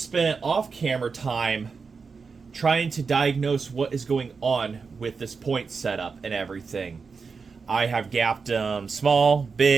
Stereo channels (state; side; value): quieter; left; 5.1 dB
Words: off-camera time trying to diagnose what is going on with this point setup and everything. I have gapped them small,